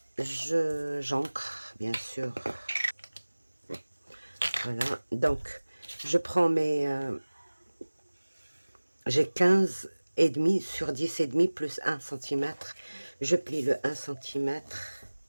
J'encre, bien sûr. Voilà, donc je prends mes... j'ai 15 et demi sur 10 et demi plus 1 cm. Je plie le 1 cm.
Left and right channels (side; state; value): both; inverted; correlation -1.00